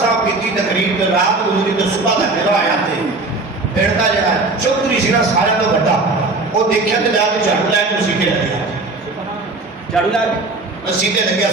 کی تقریب تے رات گزری تے صبح دا میرا آیا تے بیٹھتا جڑا چوکری سی نا سارے تو بڑا وہ دیکھیا تے جا کے جھاڑو لے کے سیدھے لگیا جھاڑو لے کے سیدھے لگیا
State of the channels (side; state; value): left; quieter; 3.3 dB